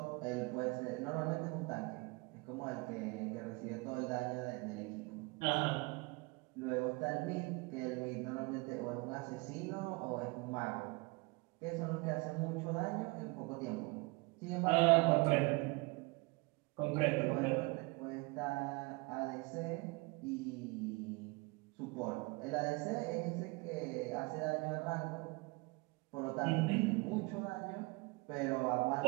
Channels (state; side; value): quieter; left; 26.6 dB